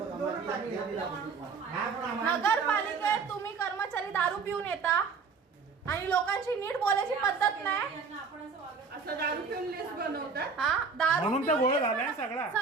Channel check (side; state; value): left; quieter; 5.1 dB